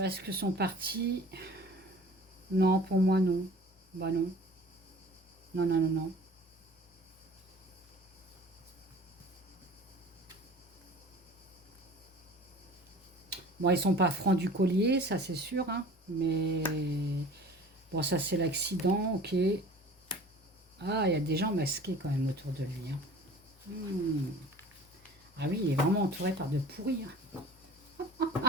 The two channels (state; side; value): normal; both; correlation 0.45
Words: Est-ce que son parti... Non, pour moi, non. Bah non. Non, non, non, non. Bon, ils sont pas francs du collier, ça c'est sûr, hein. Mais bon, ça c'est l'accident, ok. Ah, il y a des gens masqués quand même autour de lui, hein. Ah oui, il est vraiment entouré par de pourris, hein.